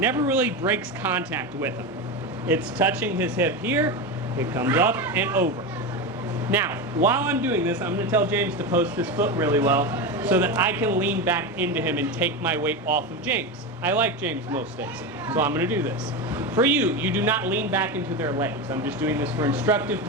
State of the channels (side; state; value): both; normal; correlation 0.18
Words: really breaks contact with him. It's touching his hip here, it comes up and over. Now, while I'm doing this, I'm going to tell James to post his foot really well so that I can lean back into him and take my weight off of James. I like James most days, so I'm going to do this. For you, you do not lean back into their legs. I'm just doing this for instructive